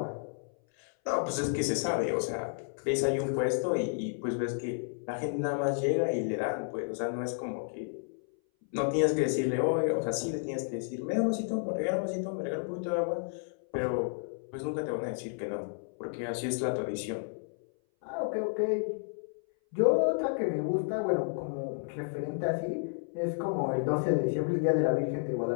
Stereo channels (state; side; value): silent; right; 57 dB below the other